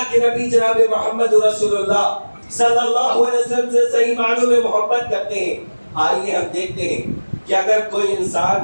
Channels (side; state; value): both; inverted; correlation -1.00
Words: کے نبی جناب محمد رسول اللہ صلی اللہ علیہ وسلم سے صحیح معنوں میں محبت کرتے ہیں۔ آئیے ہم دیکھتے ہیں کہ اگر کوئی انسان،